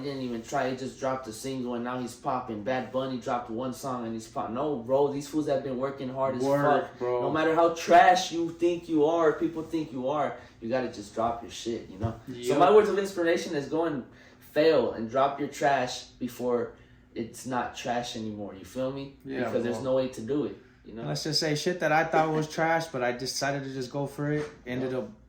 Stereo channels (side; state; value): both; identical; correlation 1.00